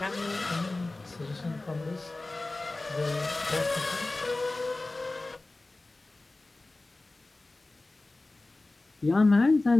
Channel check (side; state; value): right; quieter; 3.0 dB